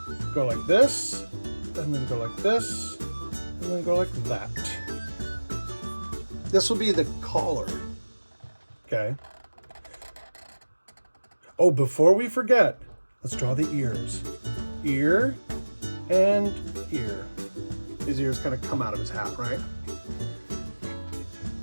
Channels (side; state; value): both; inverted; correlation -1.00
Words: go like this, and then go like this, and then go like that. This will be the collar. Okay. Oh, before we forget, let's draw the ears. Ear and ear. His ears kind of come out of his hat, right?